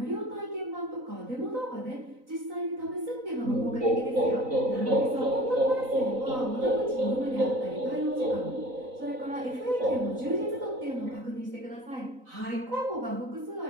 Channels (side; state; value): left; late; 3.9 ms